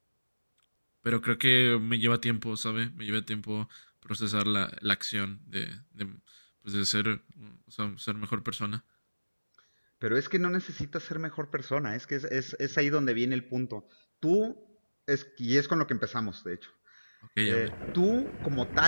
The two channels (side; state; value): both; inverted; correlation -1.00